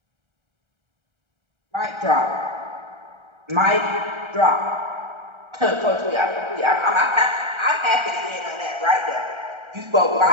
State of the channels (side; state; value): left; late; 1.3 ms